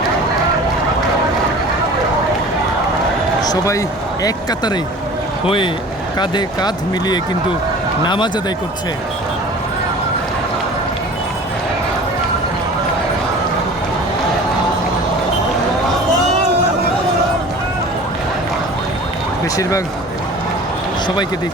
সবাই এক কাতারে হয়ে কাঁধে কাঁধ মিলিয়ে কিন্তু নামাজ আদায় করছে। বেশিরভাগ সবাইকে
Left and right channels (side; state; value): both; normal; correlation 0.42